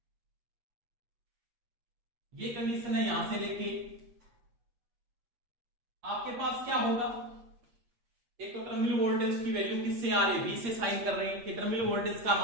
ये कंडीशन है, यहां से लेके आपके पास क्या होगा, एक तो टर्मिनल वोल्टेज की वैल्यू किससे आ रही है, वी से साइन कर रहे हैं, कि टर्मिनल वोल्टेज का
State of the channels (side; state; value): left; late; 8.6 ms